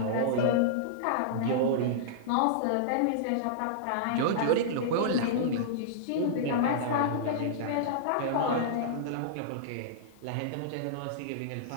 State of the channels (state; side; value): different; both; correlation -0.02